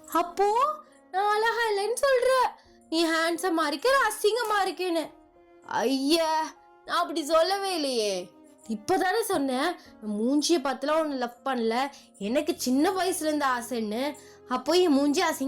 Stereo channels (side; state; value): both; identical; correlation 1.00